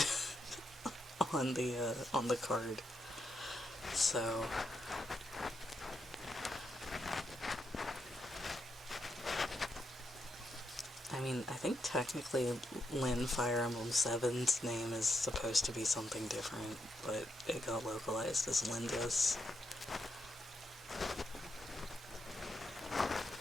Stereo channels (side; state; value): both; normal; correlation 0.82